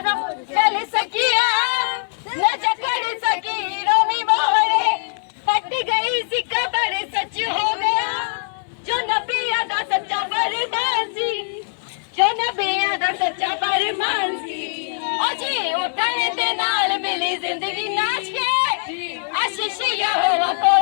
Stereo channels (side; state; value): right; silent; 57 dB below the other